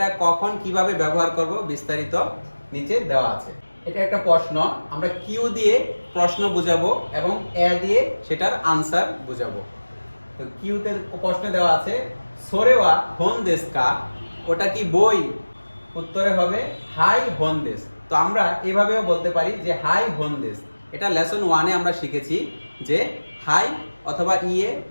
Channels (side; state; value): both; inverted; correlation -1.00